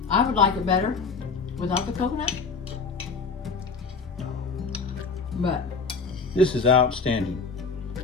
I would like it better without the coconut. But This is outstanding.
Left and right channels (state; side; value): quieter; right; 4.7 dB